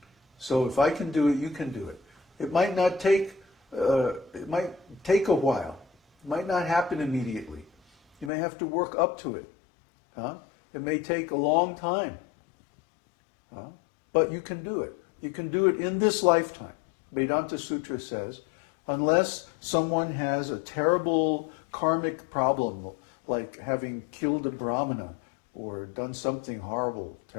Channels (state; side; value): drops out; right; at 8.3 s